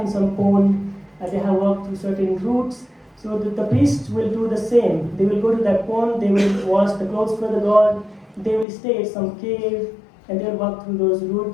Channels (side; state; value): right; drops out; at 8.7 s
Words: in some pond, they have walked through certain routes, so the priests will do the same. They will go to that pond, they will wash the clothes for the god, they will stay at some cave, and they will walk through those